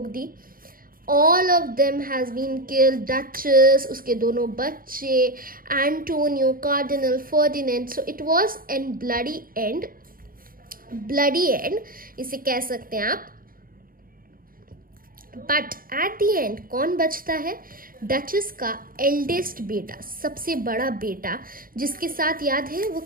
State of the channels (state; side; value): late; left; 0.41 ms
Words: दी, all of them has been killed. Duchess, उसके दोनों बच्चे, Antonio, Cardinal, Ferdinand. So it was a bloody end. Bloody end इसे कह सकते हैं आप. But at the end कौन बचता है? डचेस का एल्डेस्ट बेटा, सबसे बड़ा बेटा, जिसके साथ याद है वो